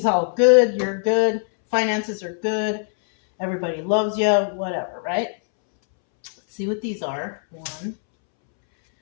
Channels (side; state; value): right; silent; 64 dB below the other